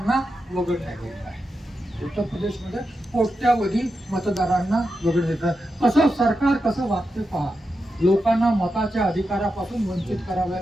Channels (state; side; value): normal; both; correlation 0.88